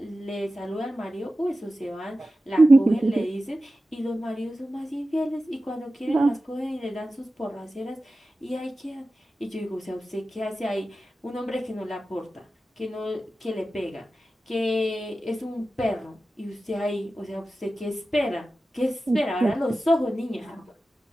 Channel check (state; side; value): normal; both; correlation 0.94